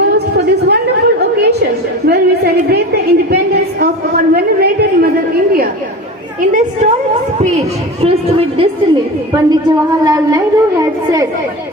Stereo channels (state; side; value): normal; both; correlation 0.30